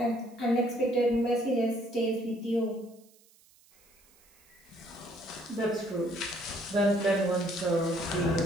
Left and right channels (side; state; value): right; noise; hiss, 29 dB below the sound